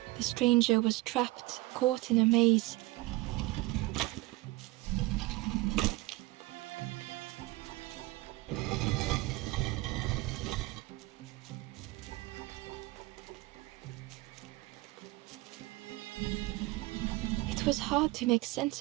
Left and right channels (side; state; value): left; quieter; 20.6 dB